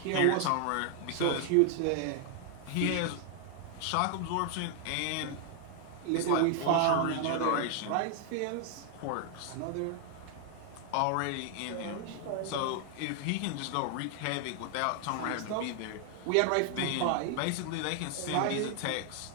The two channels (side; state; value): both; different; correlation 0.00